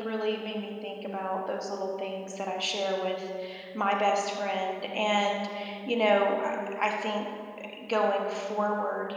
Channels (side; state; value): both; identical; correlation 1.00